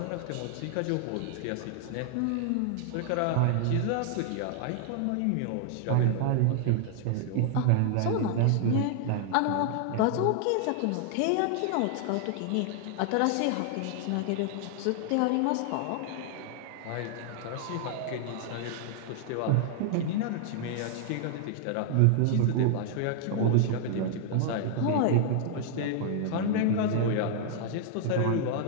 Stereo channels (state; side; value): different; both; correlation 0.00